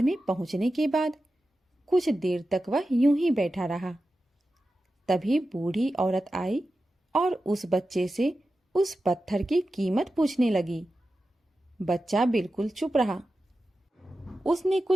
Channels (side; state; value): both; normal; correlation 0.92